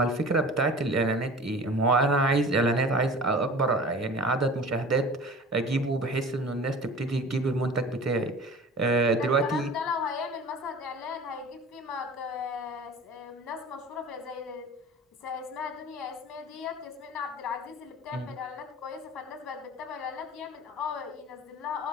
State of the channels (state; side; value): normal; both; correlation 0.40